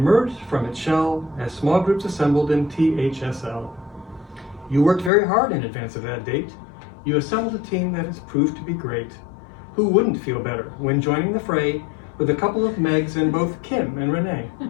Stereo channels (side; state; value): right; drops out; at 5.1 s